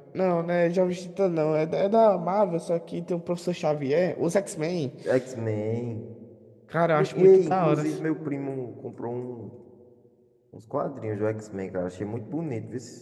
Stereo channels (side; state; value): both; identical; correlation 1.00